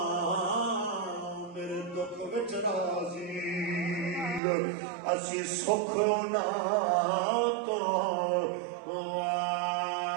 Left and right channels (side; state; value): left; drops out; at 4.4 s